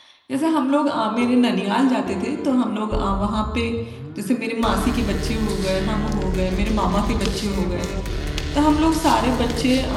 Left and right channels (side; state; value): both; identical; correlation 1.00